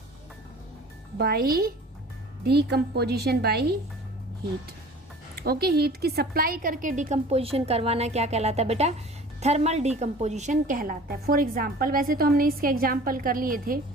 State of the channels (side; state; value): both; normal; correlation 0.44